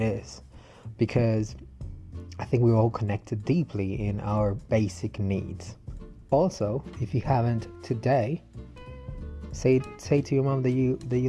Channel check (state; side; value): identical; both; correlation 1.00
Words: Because I think we're all connected deeply in our basic needs. Also, if you haven't today, say to your mom that you